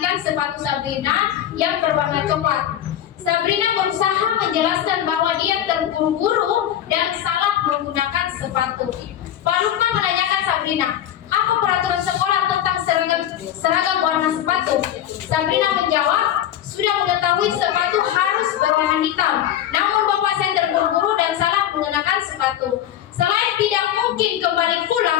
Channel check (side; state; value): right; quieter; 11.2 dB